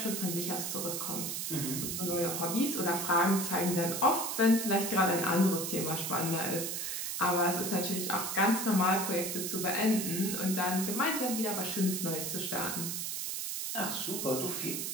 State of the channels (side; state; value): right; noise; hiss, 3 dB below the sound